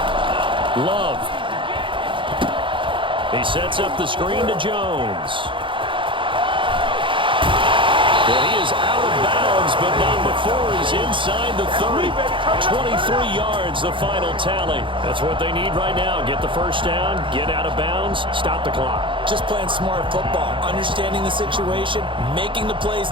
Love. He sets up the screen to Jones. Well, he is out of bounds, but not before he's inside the 30. 23 yards, the final tally. That's what they need right now. Get the first down, get out of bounds, stop the clock. Just playing smart football, understanding the situation, making the plays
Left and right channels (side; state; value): left; late; 0.24 ms